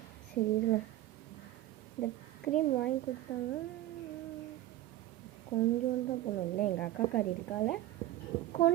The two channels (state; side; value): quieter; left; 14.7 dB